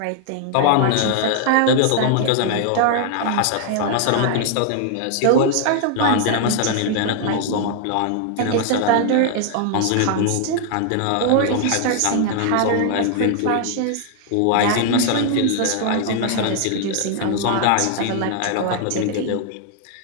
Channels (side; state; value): both; different; correlation 0.00